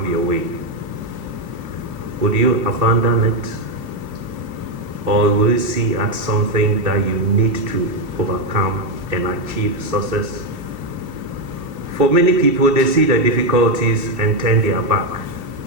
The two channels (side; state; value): left; late; 2.7 ms